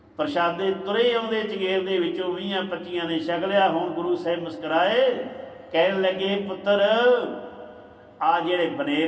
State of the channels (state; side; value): identical; both; correlation 1.00